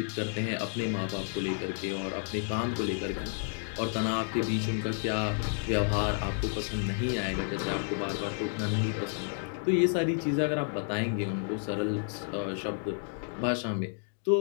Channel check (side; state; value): right; silent; 57 dB below the other